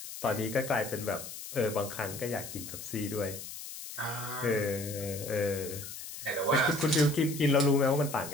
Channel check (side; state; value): left; noise; hiss, 10 dB below the sound